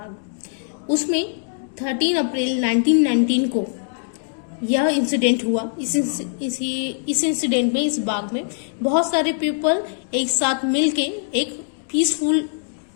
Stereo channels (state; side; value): silent; right; 64 dB below the other